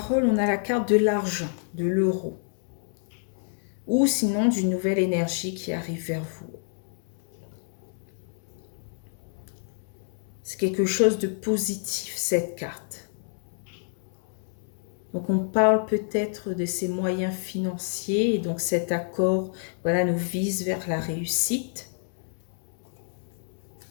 on a la carte de l'argent, de l'euro. Ou sinon, d'une nouvelle énergie qui arrive vers vous. C'est quelque chose de positif, cette carte. Donc, on parle peut-être de ces moyens financiers. Et donc, cet accord, voilà, nous vise vers la réussite.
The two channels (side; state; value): right; silent; 59 dB below the other